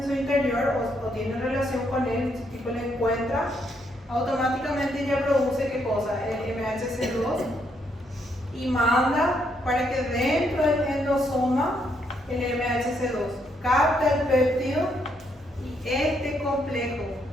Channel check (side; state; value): both; normal; correlation 0.75